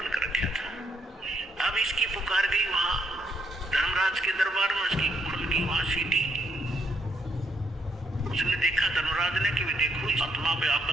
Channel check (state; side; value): normal; both; correlation 0.75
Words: कर रखा था। अब इसकी पुकार गई वहां धर्मराज के दरबार में, उसकी खुल गई वहां सीटी। उसने देखा धर्मराज ने कि देखो आत्मा पे